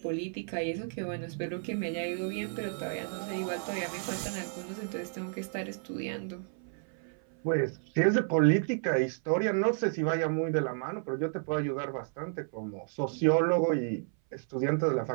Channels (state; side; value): silent; left; 57 dB below the other